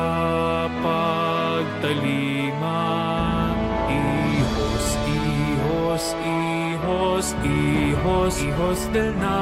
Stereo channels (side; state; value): both; identical; correlation 1.00